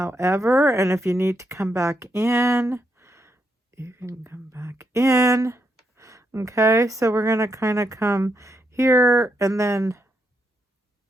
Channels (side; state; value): both; normal; correlation 0.81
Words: and if you need to come back in, you can come back in. Okay, so we're going to kind of come here, and then